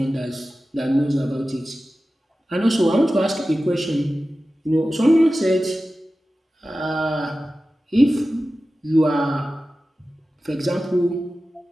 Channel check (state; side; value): normal; both; correlation 0.95